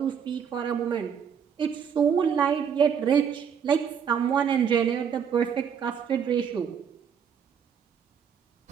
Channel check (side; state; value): left; quieter; 7.5 dB